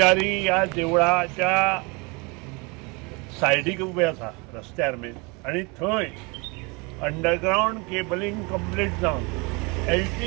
या देवळाच्या सायडीक उबे आसा रस्त्यार मेन आणि थंय अंडरग्राउंड केबलिंग कंप्लीट जावन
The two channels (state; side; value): quieter; left; 28.8 dB